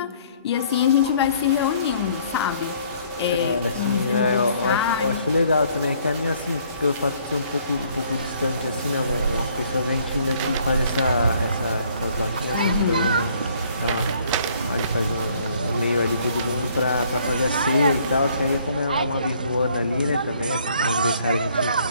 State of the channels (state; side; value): inverted; both; correlation -0.62